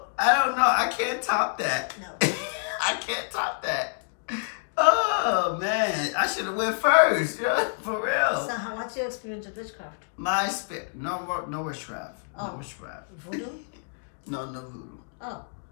I don't know. I can't top that. No. I can't top that. Oh, man. I should have went first. Yeah, for real. So what's your experience with witchcraft? My experience. No witchcraft. Oh. No witchcraft. Voodoo? No voodoo. Oh.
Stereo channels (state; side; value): silent; right; digital silence